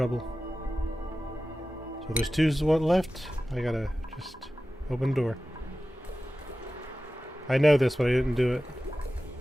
So there's two left. I gotta just open the door. I know this, but I didn't do it.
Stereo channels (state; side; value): normal; both; correlation 0.95